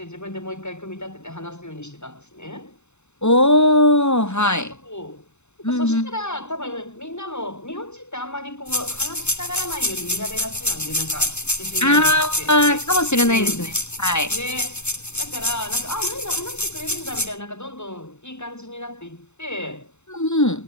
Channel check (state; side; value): late; right; 0.82 ms